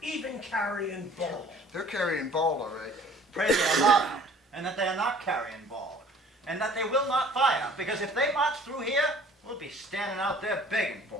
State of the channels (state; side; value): normal; both; correlation 0.51